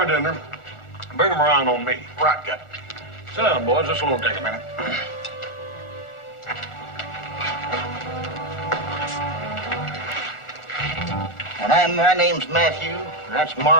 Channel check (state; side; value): late; right; 1.4 ms